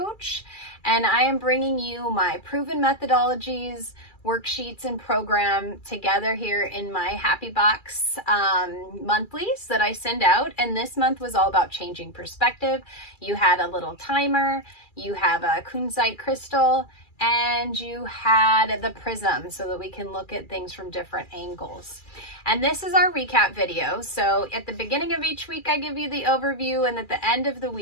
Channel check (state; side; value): late; right; 2.3 ms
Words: and I am bringing you my proven methodologies, worksheets, and program together here in my Happy Box monthlies that I send out. And this month was all about changing perspective. You had a little timer, you have a kunzite crystal, and you had the prism so that we can look at things from different angles. And this is our recap video. So at the beginning of each week, I give you the overview, and at the end of the